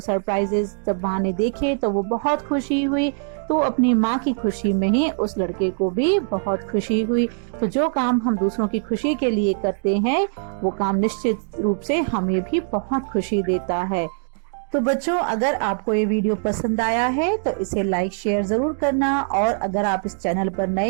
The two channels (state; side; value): silent; left; 57 dB below the other